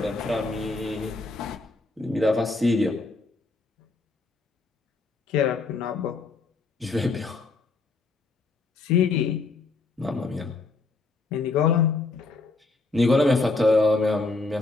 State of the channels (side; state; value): right; quieter; 3.7 dB